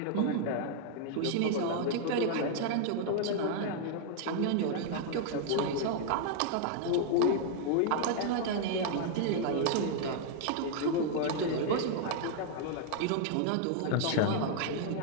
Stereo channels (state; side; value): different; both; correlation 0.00